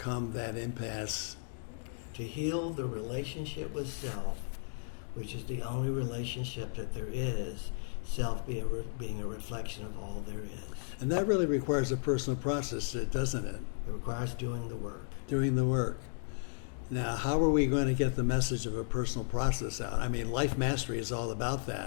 that impasse? To heal the relationship with self, which is the only relationship that there is, self being a reflection of all there is. And that really requires a personal process, doesn't it? It requires doing the work. Doing the work. Now, how are we going to get the message of a personal process out? I mean, Life Mastery is all about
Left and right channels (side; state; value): right; silent; digital silence